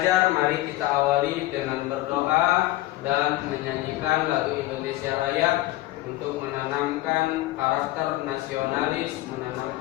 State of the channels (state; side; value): quieter; right; 17.5 dB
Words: mari kita awali dengan berdoa dan menyanyikan lagu Indonesia Raya untuk menanamkan karakter nasionalis,